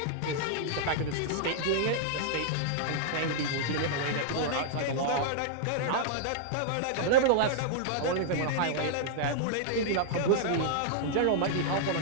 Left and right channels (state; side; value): different; both; correlation -0.01